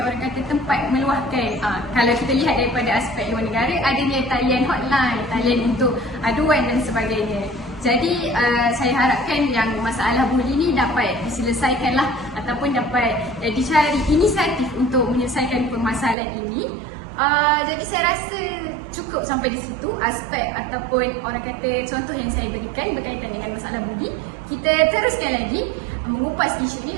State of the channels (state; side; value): drops out; left; at 16.2 s